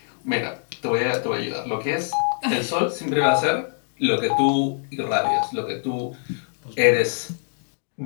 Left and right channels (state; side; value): silent; right; digital silence